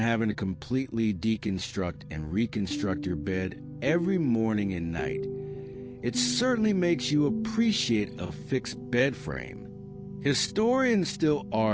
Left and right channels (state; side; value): identical; both; correlation 1.00